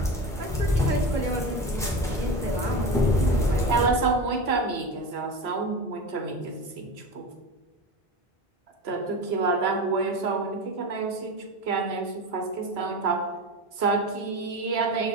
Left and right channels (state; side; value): normal; both; correlation 0.26